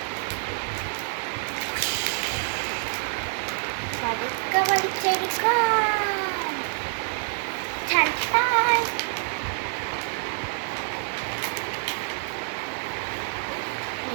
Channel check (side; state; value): left; silent; 60 dB below the other